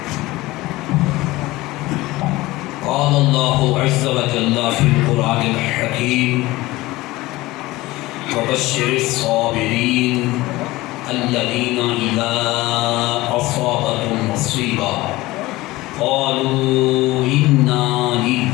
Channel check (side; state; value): right; quieter; 19.2 dB